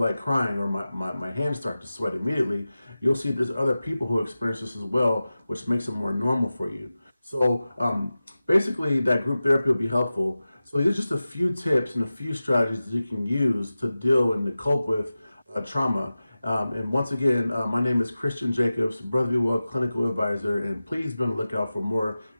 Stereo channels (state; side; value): inverted; both; correlation -0.95